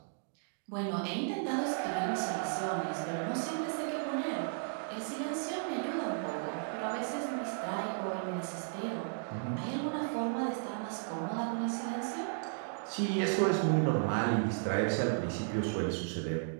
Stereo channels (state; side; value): silent; left; digital silence